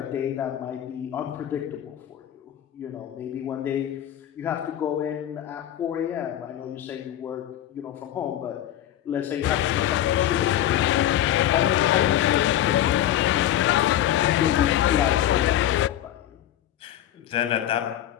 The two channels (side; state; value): right; quieter; 12.0 dB